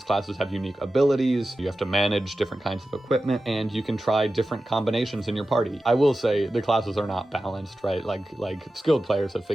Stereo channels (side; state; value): both; normal; correlation 0.93